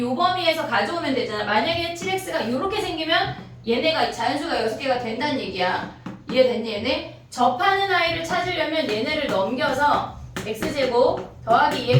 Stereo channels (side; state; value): both; identical; correlation 1.00